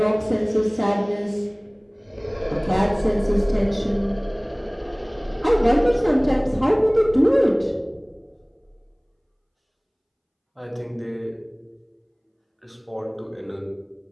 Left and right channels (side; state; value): both; identical; correlation 1.00